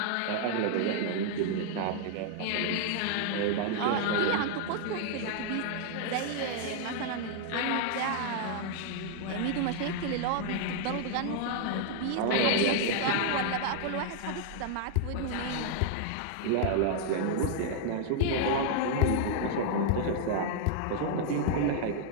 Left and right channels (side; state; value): both; different; correlation -0.01